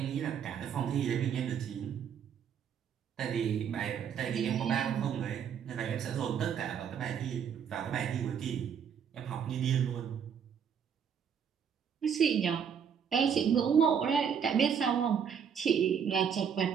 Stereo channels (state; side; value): quieter; left; 7.7 dB